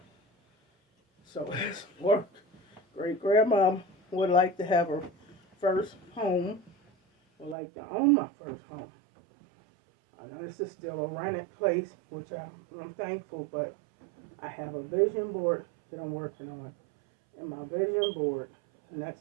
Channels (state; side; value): drops out; left; at 7.6 s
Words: So it's work. Great grandma would like to have her first home would like to own my first home. I know this is still a rented place, which I'm thankful, but I have a vision board that I'm working on. And my vision board, the